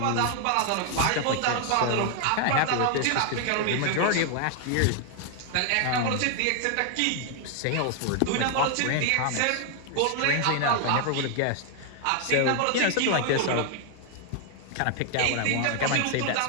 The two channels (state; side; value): different; both; correlation 0.00